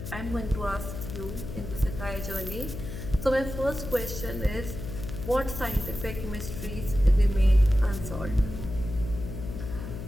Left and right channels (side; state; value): left; noise; hum, 8 dB below the sound